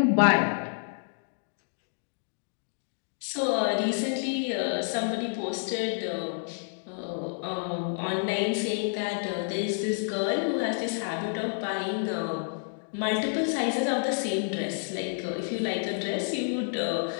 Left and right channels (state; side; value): silent; right; digital silence